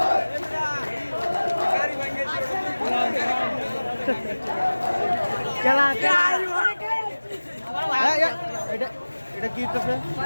এটা কি হচ্ছে?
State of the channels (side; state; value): both; inverted; correlation -1.00